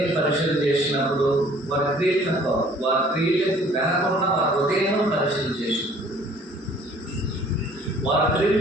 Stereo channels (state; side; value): normal; both; correlation 0.55